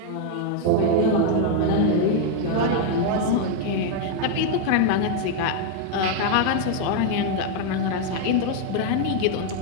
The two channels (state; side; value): different; both; correlation 0.00